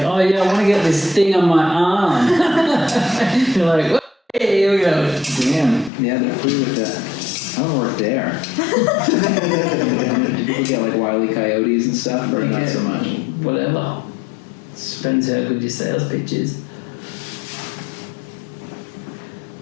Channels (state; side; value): drops out; right; at 5.9 s